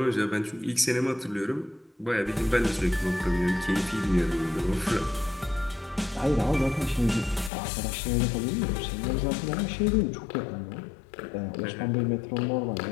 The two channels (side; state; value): right; drops out; at 7.5 s